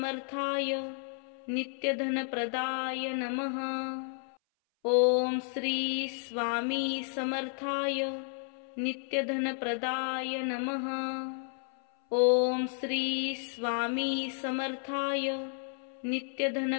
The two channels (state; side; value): silent; right; 56 dB below the other